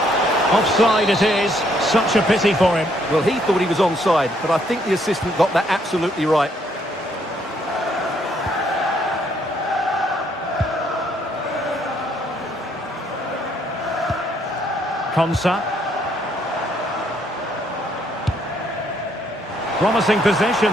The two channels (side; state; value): both; normal; correlation 0.69